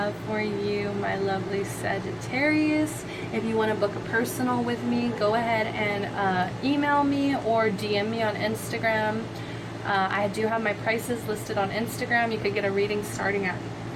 for you, my lovely Sagittarius. If you want to book a personal with me, go ahead and email me or DM me on Instagram. I do have my prices listed on Instagram. You could get a reading starting at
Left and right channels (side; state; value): both; identical; correlation 1.00